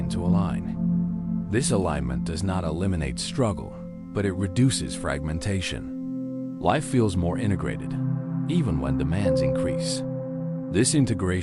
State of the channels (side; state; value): both; identical; correlation 1.00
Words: to align. This alignment does not eliminate struggle, but it reduces fragmentation. Life feels more integrated, even when demands increase. This